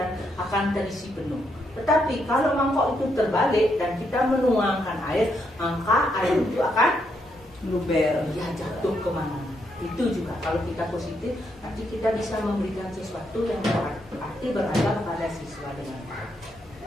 akan terisi penuh. Tetapi kalau mangkok itu terbalik dan kita menuangkan air, maka air itu akan Luber. ya jatuh kemana-mana. Itu juga kalau kita positif, nanti kita bisa memberikan sesuatu yang berarti beragam pada siswa dengan baik.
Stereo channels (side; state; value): both; normal; correlation 0.78